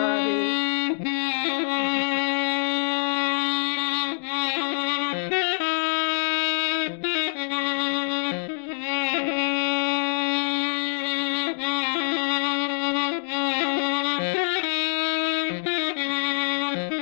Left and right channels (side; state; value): right; silent; digital silence